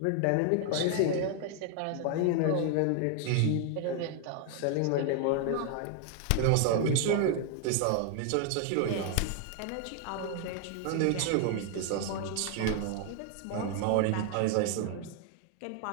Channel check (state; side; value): different; both; correlation 0.00